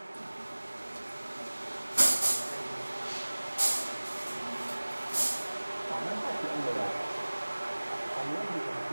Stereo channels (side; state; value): both; inverted; correlation -1.00